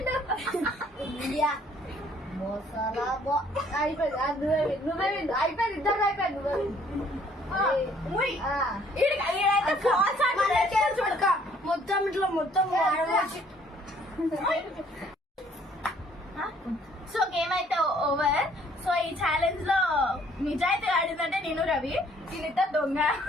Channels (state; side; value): normal; both; correlation 0.61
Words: ఇండియా మోసాలా అయిపోయింది నువ్వే అయిపోయింది ఇద్దరు అయిపోయింది మొత్తం ఇట్లా మొత్తం సో గేమ్ అయితే ఓవర్. సో ఈ ఛాలెంజ్ లో నిజాయితీ ఆడిందంటే నేను రవి, దీనితో దొంగ